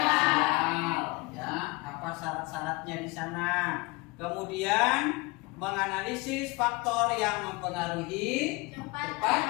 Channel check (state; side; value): quieter; right; 25.1 dB